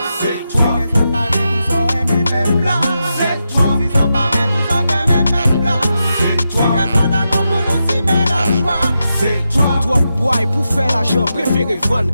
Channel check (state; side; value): inverted; both; correlation -0.87